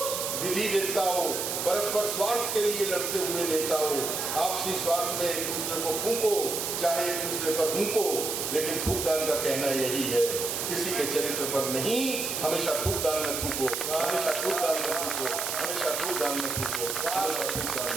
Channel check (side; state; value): right; noise; hiss, 2 dB below the sound